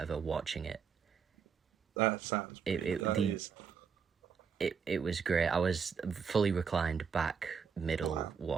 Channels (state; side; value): quieter; left; 6.4 dB